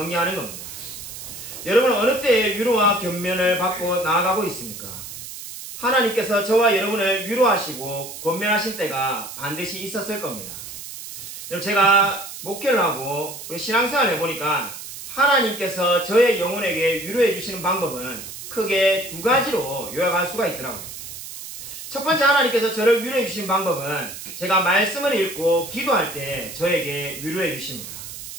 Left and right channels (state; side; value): noise; right; hiss, 11 dB below the sound